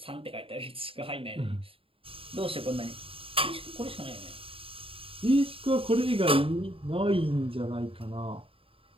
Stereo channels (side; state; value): left; late; 0.27 ms